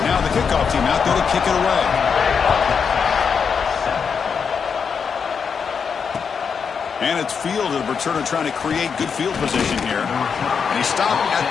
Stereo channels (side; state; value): right; quieter; 6.3 dB